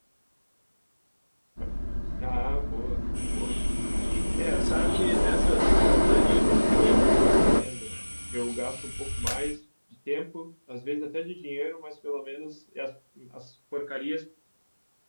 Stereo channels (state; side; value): inverted; both; correlation -1.00